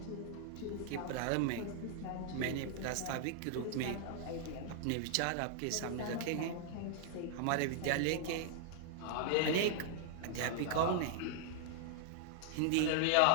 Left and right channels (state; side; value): different; both; correlation -0.01